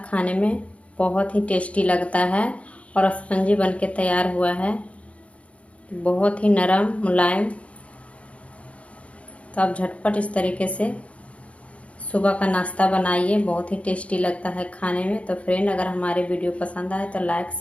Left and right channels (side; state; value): right; late; 0.063 ms